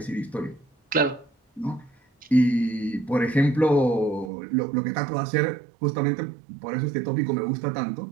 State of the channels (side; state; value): left; drops out; at 4.3 s